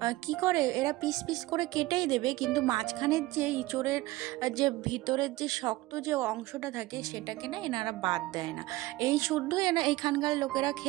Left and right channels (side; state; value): left; quieter; 19.0 dB